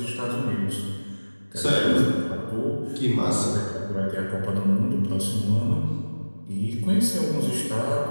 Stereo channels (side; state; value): both; inverted; correlation -1.00